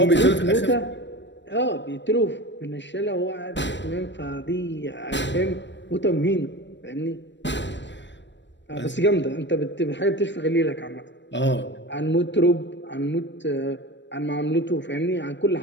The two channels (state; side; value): late; right; 0.53 ms